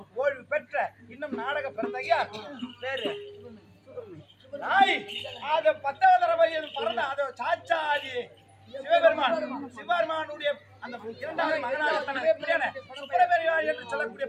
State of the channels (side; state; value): both; identical; correlation 1.00